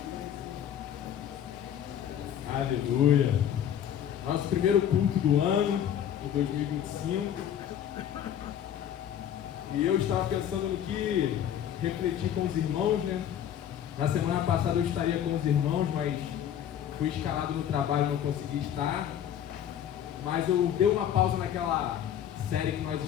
Aleluia. Nosso primeiro culto do ano, de 2025. E eu estava pensando no que refletir com os irmãos, né? Na semana passada eu estaria com os irmãos, mas fui escalado no trabalho e não consegui estar. Mas eu dei uma pausa naquela série que nós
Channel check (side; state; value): right; quieter; 9.9 dB